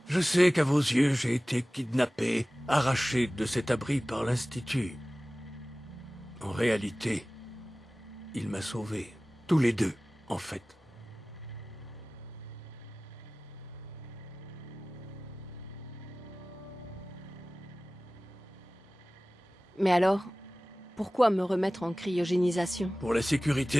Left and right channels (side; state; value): both; normal; correlation 0.97